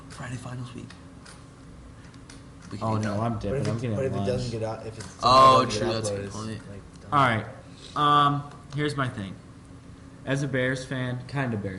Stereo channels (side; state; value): both; identical; correlation 1.00